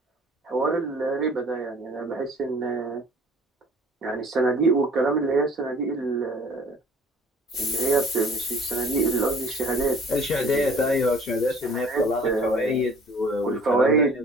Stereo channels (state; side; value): normal; both; correlation 0.51